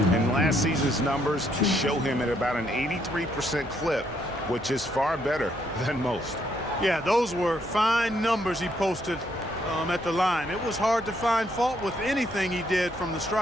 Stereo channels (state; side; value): noise; right; hum, 19 dB below the sound